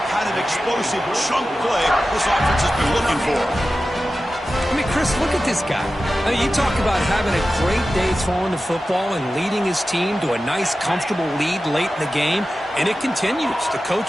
kind of explosive chunk play this offense has been looking for. I mean, Chris, look at this guy. I mean, you talk about having a great day throwing the football and leading his team to a nice, comfortable lead late in the game, and it continues. The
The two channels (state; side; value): normal; both; correlation 0.94